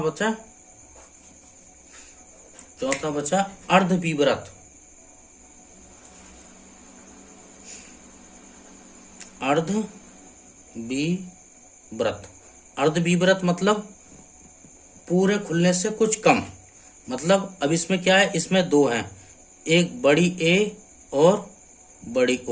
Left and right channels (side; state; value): both; identical; correlation 1.00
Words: बचा अर्ध बीव्रत। अर्ध बीव्रत मतलब पूरे खुलने से कुछ कम, मतलब अब इसमें क्या है, इसमें दो हैं, एक बड़ी ए और बड़ी